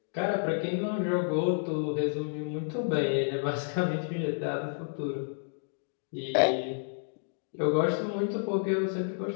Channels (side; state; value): right; silent; digital silence